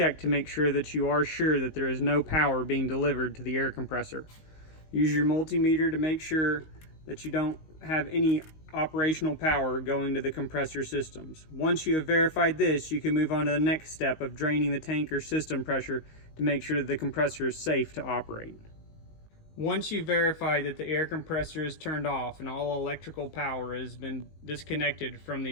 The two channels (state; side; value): late; right; 19 ms